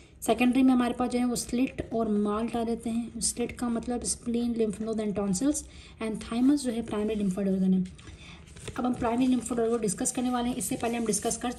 सेकेंडरी में हमारे पास जो है वो स्लिट और माल्ट आ जाते हैं। स्लिट का मतलब spleen, lymph node and tonsils, and thymus जो है प्राइमरी लिम्फोइड ऑर्गन है। अब हम प्राइमरी लिम्फोइड ऑर्गन को डिस्कस करने वाले हैं। इससे पहले हम डिस्कस कर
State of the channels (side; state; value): both; identical; correlation 1.00